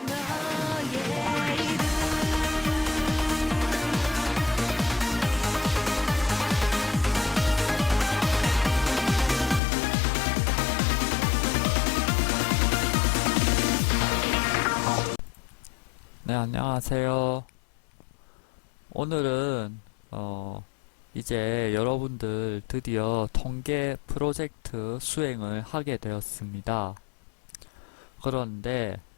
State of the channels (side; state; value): right; drops out; at 9.6 s